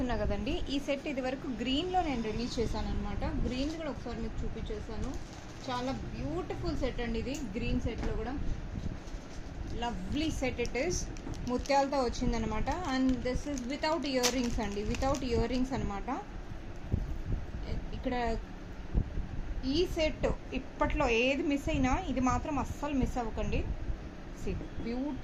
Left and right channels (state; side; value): identical; both; correlation 1.00